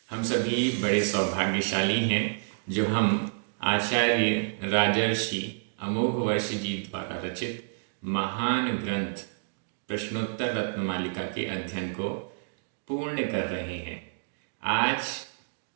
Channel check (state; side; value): silent; left; digital silence